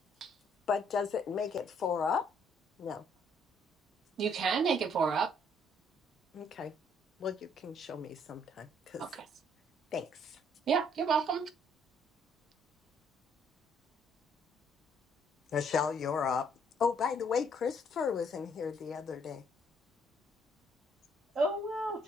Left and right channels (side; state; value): both; normal; correlation 0.66